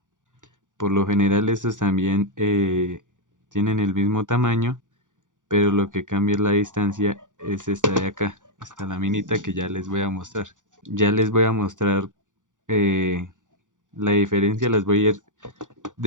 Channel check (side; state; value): left; late; 0.87 ms